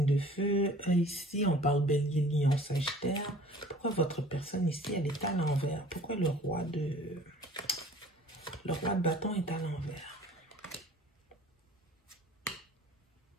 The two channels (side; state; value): both; normal; correlation 0.49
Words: de feu. Ici, on parle bélier, lion, sagittaire. Pourquoi votre personne ici, elle est à l'envers? Pourquoi le roi de bâton est à l'envers?